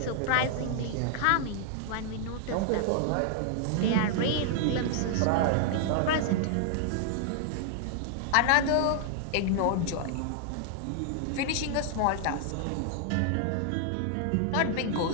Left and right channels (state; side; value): different; both; correlation 0.00